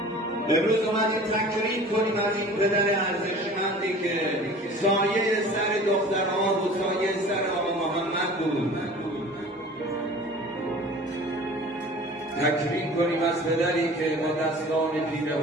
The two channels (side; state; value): both; normal; correlation 0.43